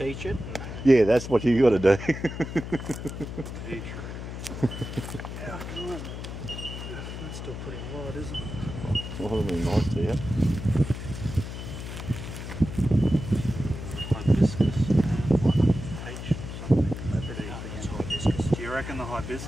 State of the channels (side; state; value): left; noise; hum, 8 dB below the sound